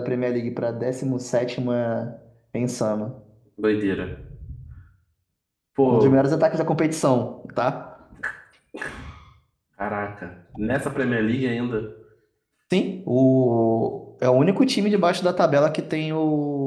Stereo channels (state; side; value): identical; both; correlation 1.00